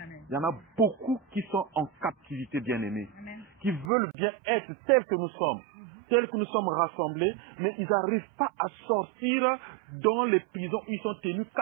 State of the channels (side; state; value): left; drops out; at 3.9 s